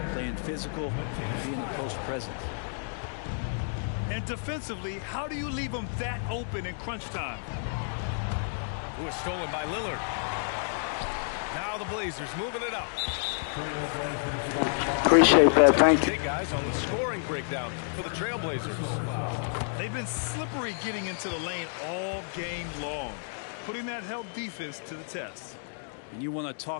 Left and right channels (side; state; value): right; silent; digital silence